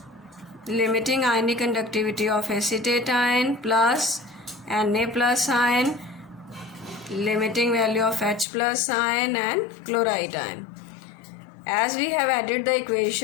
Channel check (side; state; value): right; drops out; at 8.5 s